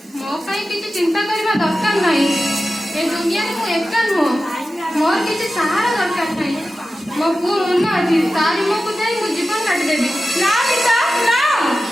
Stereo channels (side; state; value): both; normal; correlation 0.94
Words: ମୋ ପାଇଁ କିଛି ଚିନ୍ତା କରିବା ଦରକାର ନାହିଁ। ଏ ଦୁନିଆରେ ମୁଁ ଏକା ନୁହଁ। ମୋର କିଛି ସାହାରା ଦରକାର ନାହିଁ। ମୋ ପୁଅ ମନ ଅଛି, ତାରି ମୁହଁକୁ ଯାଇ ମୁଁ ଜୀବନ କାଟିଦେବି। ନା ମିତା, ନା।